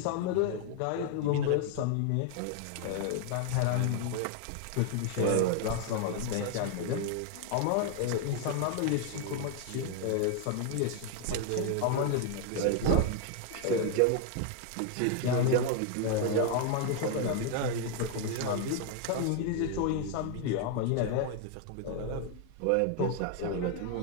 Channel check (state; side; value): different; both; correlation 0.00